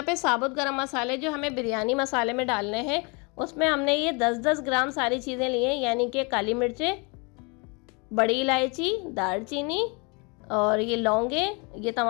पे साबुत गरम मसाले जो हमें बिरयानी मसाले में डालने हैं, उसमें हमने ये 10-10 ग्राम सारी चीज़ें ली हैं, यानी कि काली मिर्चें, बड़ी इलायची, दालचीनी और ये लौंगे, ये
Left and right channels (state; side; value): quieter; right; 31.1 dB